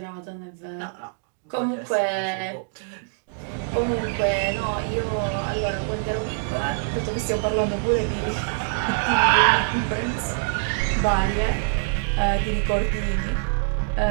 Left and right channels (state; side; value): silent; left; digital silence